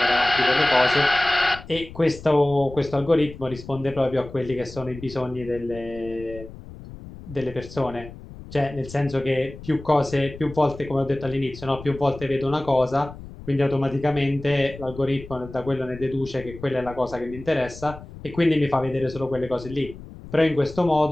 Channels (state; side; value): noise; left; rumble, 15 dB below the sound